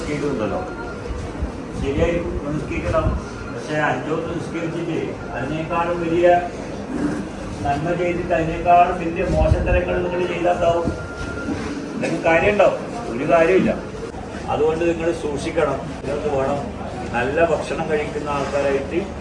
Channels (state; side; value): identical; both; correlation 1.00